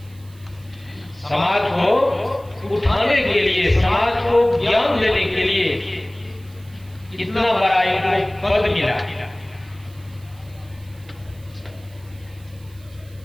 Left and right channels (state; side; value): noise; right; hiss, 27 dB below the sound